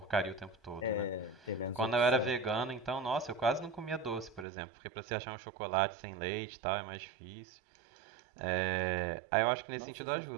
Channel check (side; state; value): left; drops out; at 4.5 s